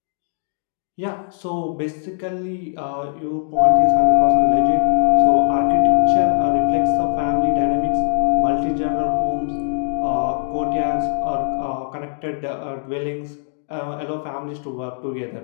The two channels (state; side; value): silent; right; digital silence